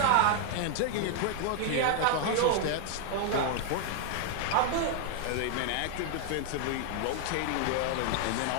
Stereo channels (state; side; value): different; both; correlation 0.00